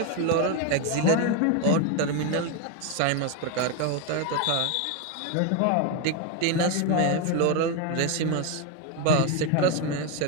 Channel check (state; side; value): different; both; correlation 0.02